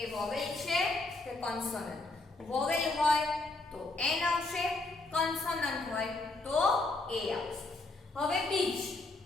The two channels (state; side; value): quieter; right; 3.2 dB